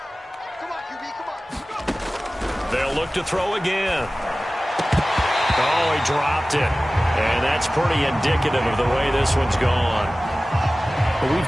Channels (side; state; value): both; normal; correlation 0.97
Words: They'll look to throw again. Oh, he dropped it. And that's pretty indicative of the way this one's gone. Well,